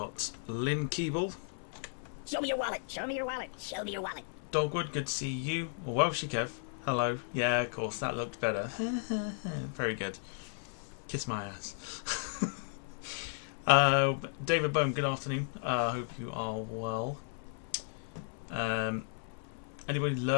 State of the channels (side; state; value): right; silent; 55 dB below the other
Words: Lynn Keeble. Show me your wallet. Show me your wallet. Show me your wallet. Dogwood, good to see you. Welshie Kev, hello. Yeah, of course, that looked better. Very good. Kiss my ass. David Boehm, good afternoon. Hope you are well. Anybody